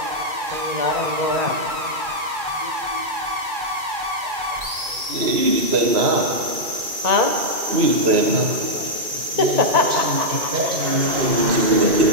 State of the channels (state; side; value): late; left; 2.4 ms